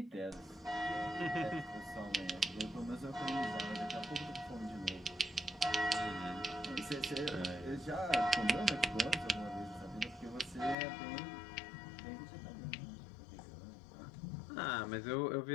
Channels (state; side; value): drops out; right; at 10.8 s